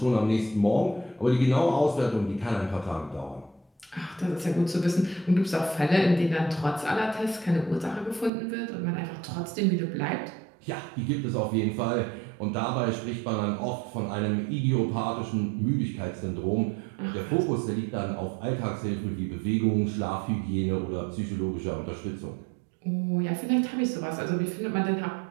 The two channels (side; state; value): left; drops out; at 8.3 s